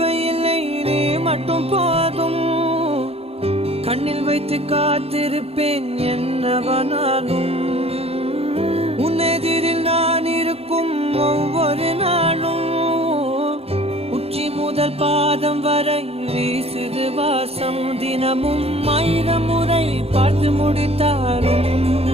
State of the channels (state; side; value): late; left; 0.29 ms